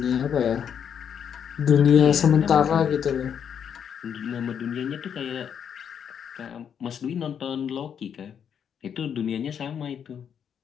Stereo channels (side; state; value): right; quieter; 8.0 dB